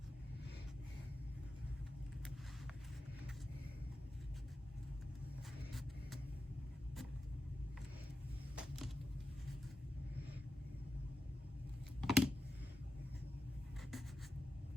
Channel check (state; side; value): normal; both; correlation 0.90